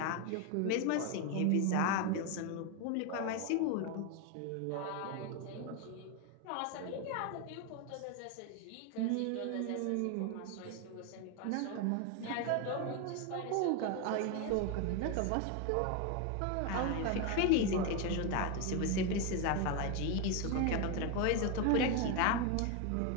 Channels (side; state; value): both; different; correlation 0.02